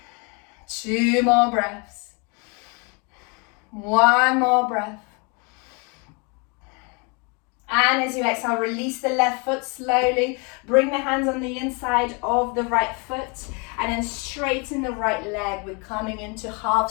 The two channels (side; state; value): right; quieter; 32.7 dB